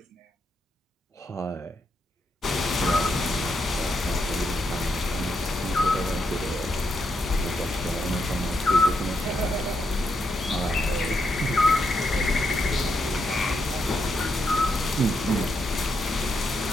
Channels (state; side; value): normal; both; correlation 0.81